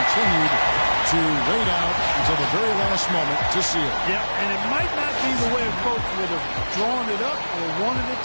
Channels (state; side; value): inverted; both; correlation -1.00